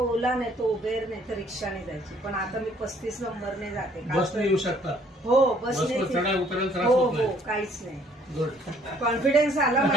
नाही तो उबेर नाही तर रिक्षाने जायची, पण आता मी 35 नंबरने जाते। बसने येऊ शकता? हो, बसने चढा उतरायला त्रास हो होत हो, नाही? काहीच नाही। गुड. कॉन्फिडन्स आला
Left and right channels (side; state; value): both; normal; correlation 0.61